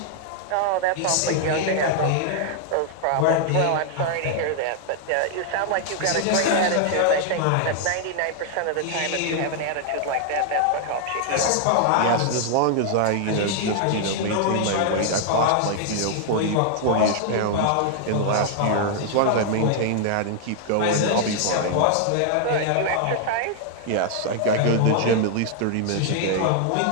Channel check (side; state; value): both; different; correlation 0.00